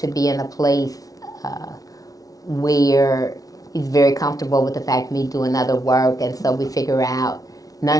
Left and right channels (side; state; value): right; late; 0.18 ms